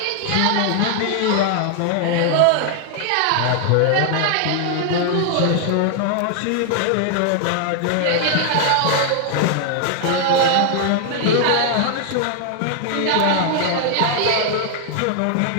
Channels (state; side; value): different; both; correlation 0.00